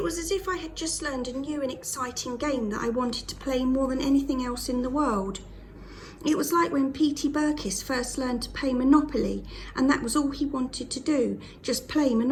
was as if I had just learned a new and exciting game that I wanted to play more than anything else in the world. It was like when P.T. Burkiss first learned to play Monopoly, and that was all he wanted to do, just play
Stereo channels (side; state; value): both; identical; correlation 1.00